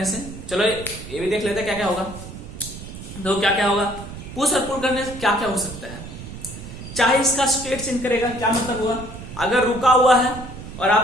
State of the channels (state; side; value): noise; right; rumble, 12 dB below the sound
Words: से। चलो ये भी देख लेते हैं क्या क्या होगा। दो क्या क्या होगा, पुश और पुल करने से क्या क्या हो सकता है। चाहे इसका स्टेट चेंज करेगा, क्या मतलब हुआ, अगर रुका हुआ है और